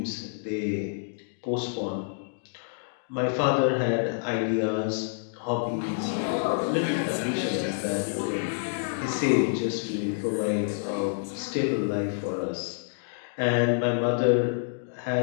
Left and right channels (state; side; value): silent; right; digital silence